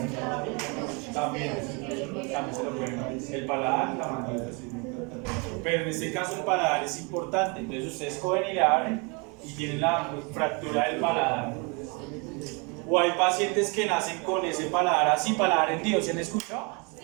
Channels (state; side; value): quieter; left; 31.6 dB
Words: También se lo pueden abrir. El paladar, la mandíbula. Pero en este caso el paladar es importante. Entonces ustedes cogen y le abren y tienen la fractura del paladar. O hay pacientes que nacen con ese paladar así, paladar hendido, ¿se han escuchado?